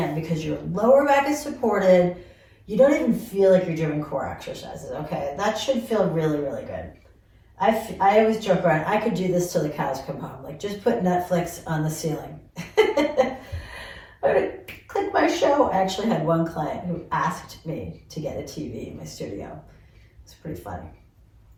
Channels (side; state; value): both; identical; correlation 1.00